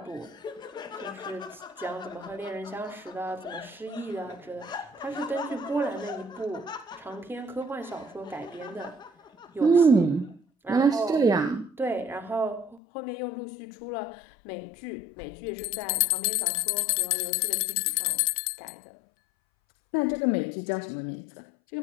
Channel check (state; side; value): drops out; right; at 12.8 s